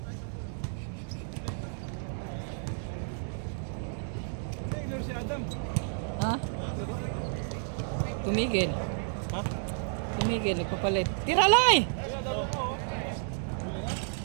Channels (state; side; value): silent; left; digital silence